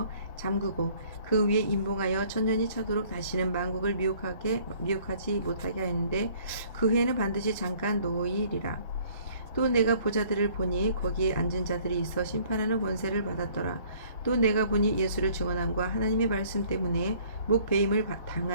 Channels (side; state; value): both; inverted; correlation -0.57